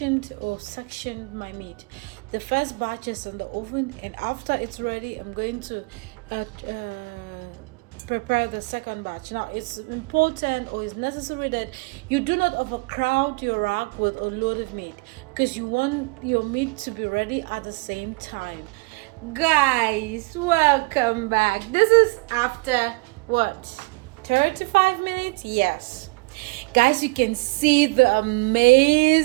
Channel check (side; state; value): left; quieter; 28.0 dB